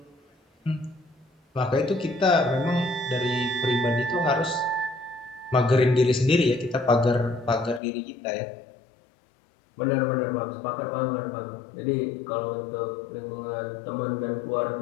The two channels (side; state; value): right; drops out; at 7.8 s